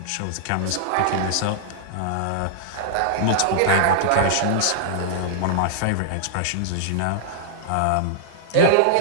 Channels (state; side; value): different; both; correlation -0.01